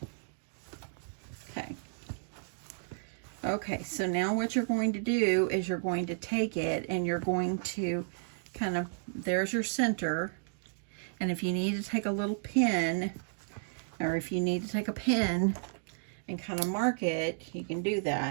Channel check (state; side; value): silent; left; digital silence